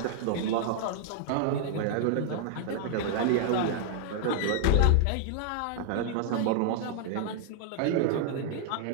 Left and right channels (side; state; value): both; different; correlation -0.01